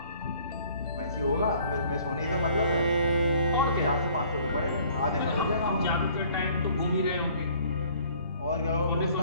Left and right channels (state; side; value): inverted; both; correlation -0.56